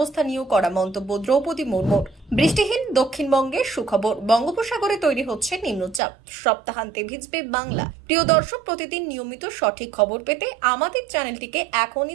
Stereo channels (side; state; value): left; drops out; at 6.0 s